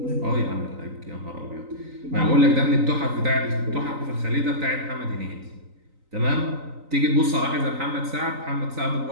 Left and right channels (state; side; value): late; left; 3.9 ms